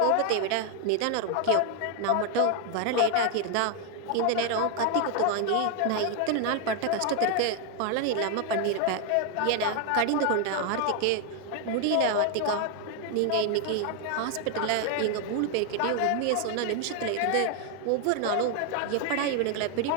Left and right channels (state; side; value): different; both; correlation 0.01